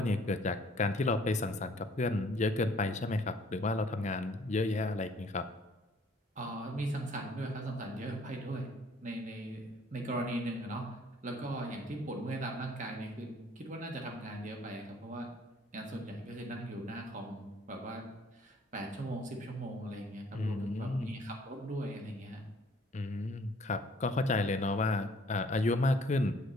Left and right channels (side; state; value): both; normal; correlation 0.59